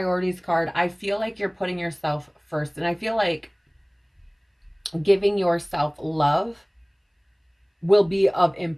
card, I feel like you're putting yourself first. And I feel like giving yourself love will be of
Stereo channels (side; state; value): both; identical; correlation 1.00